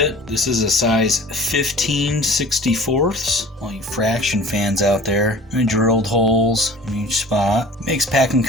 This is a size 15/64. All you fraction fans out there. I drilled holes in each spot. Makes packing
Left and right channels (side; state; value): both; normal; correlation 0.43